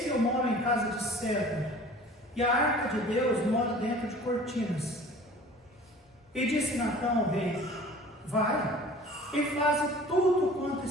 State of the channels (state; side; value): normal; both; correlation 0.45